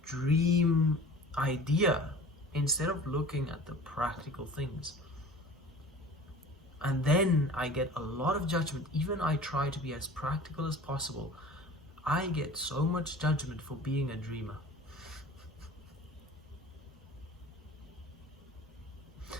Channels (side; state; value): both; normal; correlation 0.42